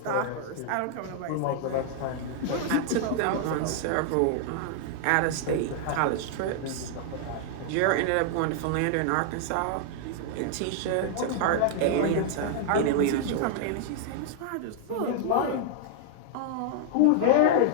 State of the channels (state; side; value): different; both; correlation -0.01